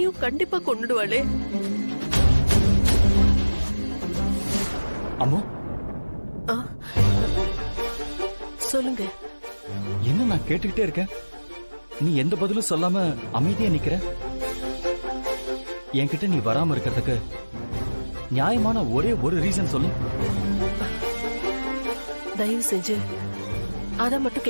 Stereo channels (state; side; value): inverted; both; correlation -1.00